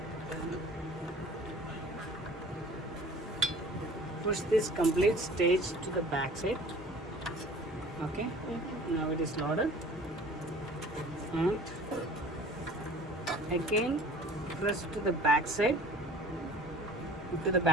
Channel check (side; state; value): both; normal; correlation 0.47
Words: Push this complete stage to the back side. Okay. Now it is loaded. And again press to the back side,